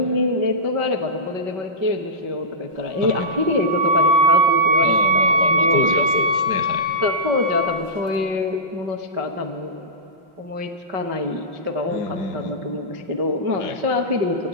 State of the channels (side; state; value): left; late; 5.1 ms